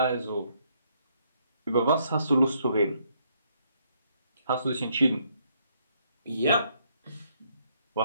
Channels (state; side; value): inverted; both; correlation -0.71